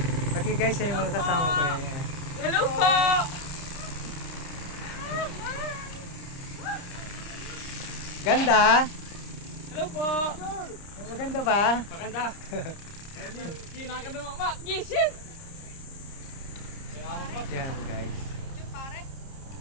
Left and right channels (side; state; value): right; late; 30 ms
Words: Okay guys, yan yung mga kasama ko. Yan. Hello po! Ganda? Hello po! Maganda ba? Maganda! Hindi nakakadunga ba? Gising! Yan guys.